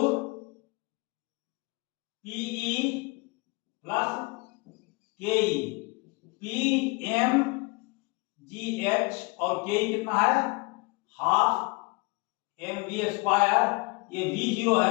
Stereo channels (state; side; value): quieter; right; 27.2 dB